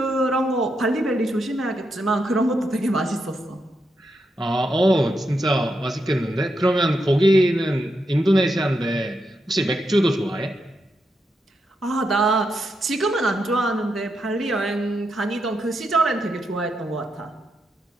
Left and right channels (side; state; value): both; normal; correlation 0.83